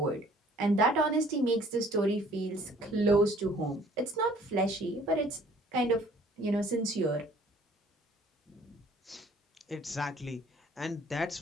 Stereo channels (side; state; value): both; normal; correlation 0.56